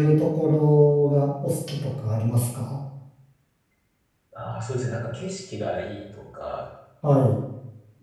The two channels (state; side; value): identical; both; correlation 1.00